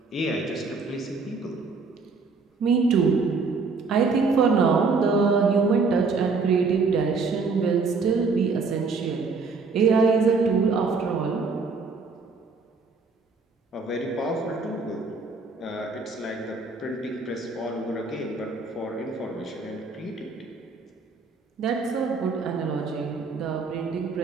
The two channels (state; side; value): quieter; left; 4.4 dB